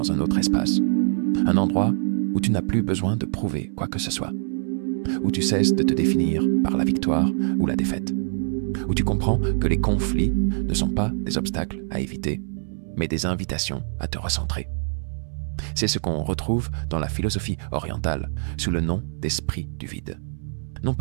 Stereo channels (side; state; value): left; silent; 62 dB below the other